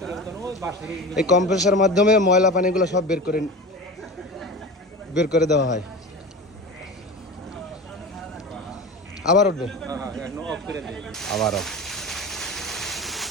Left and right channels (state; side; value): normal; both; correlation 0.31